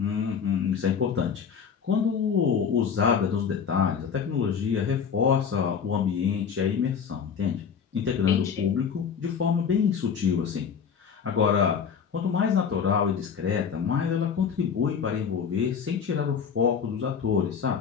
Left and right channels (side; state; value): right; quieter; 6.9 dB